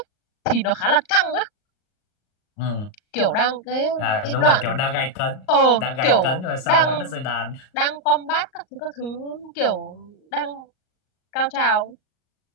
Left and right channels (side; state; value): right; late; 38 ms